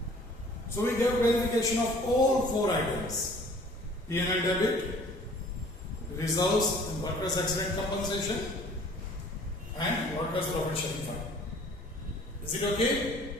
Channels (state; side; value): normal; both; correlation 0.52